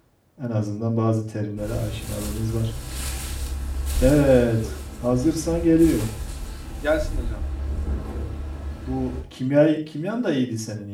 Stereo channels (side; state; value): both; identical; correlation 1.00